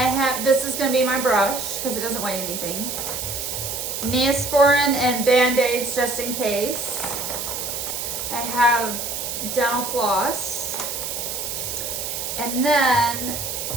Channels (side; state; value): right; noise; hiss, 4 dB below the sound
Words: This is going to be my brush because it doesn't weigh anything. Neosporin and Band-Aids just in case. I have dental floss. And then